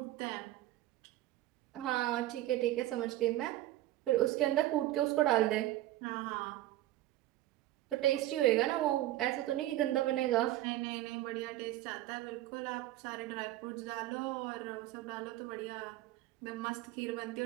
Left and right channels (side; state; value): left; quieter; 15.3 dB